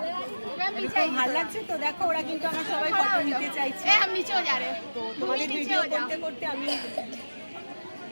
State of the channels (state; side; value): inverted; both; correlation -1.00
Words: ভালো লাগছে। তো দেখো ওরা কিন্তু আমার সবাই ফটো নিতে চাইছে। তো তোমাদের ভিডিও করতে করতে আমি